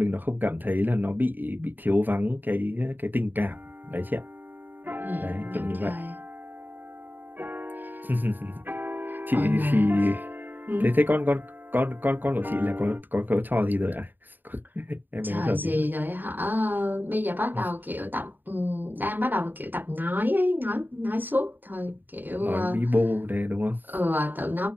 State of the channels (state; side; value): late; left; 0.090 ms